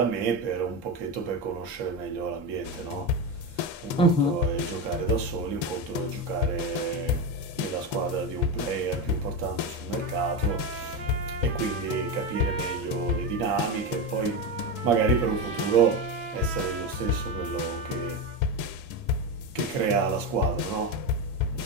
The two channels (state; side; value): normal; both; correlation 0.16